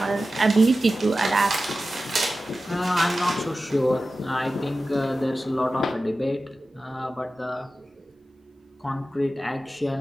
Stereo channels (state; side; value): normal; both; correlation 0.94